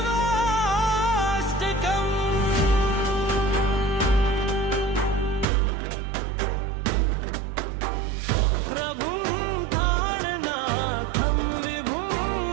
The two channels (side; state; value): left; drops out; at 5.5 s